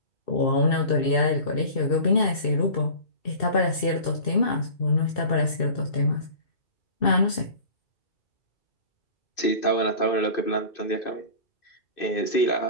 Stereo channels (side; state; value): right; late; 2.6 ms